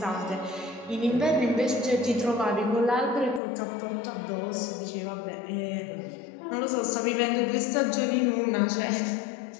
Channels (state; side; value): drops out; right; at 3.4 s